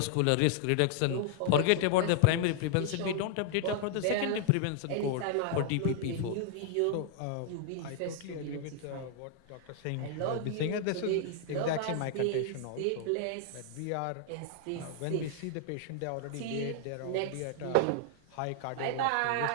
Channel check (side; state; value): both; different; correlation -0.01